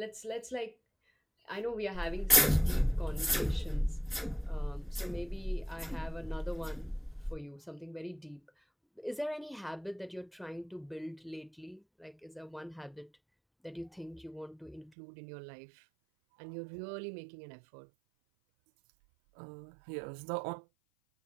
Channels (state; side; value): drops out; left; at 14.9 s